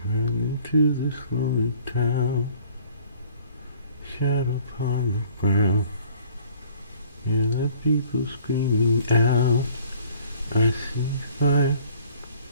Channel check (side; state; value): both; inverted; correlation -0.55